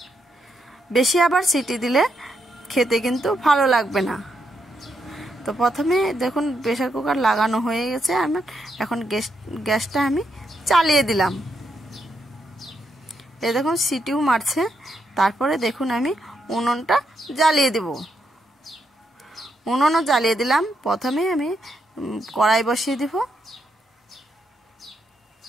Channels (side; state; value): both; normal; correlation 0.80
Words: বেশি আবার সিটি দিলে খেতে কিন্তু ভালো লাগবে না। তো প্রথমে দেখুন প্রেসার কুকার লাগানো হয়ে গেছে আমার, এখন গ্যাসটা আমি চালিয়ে দিলাম। এই দেখুন সিটিও মারছে। তারপরে দেখুন আমি উনুনটা জ্বালিয়ে দেব। উনুনও জ্বালিয়ে দিলাম। প্রথমে আমি কড়াই বসিয়ে দিব।